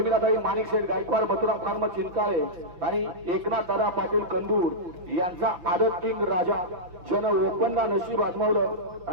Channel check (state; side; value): late; left; 5.8 ms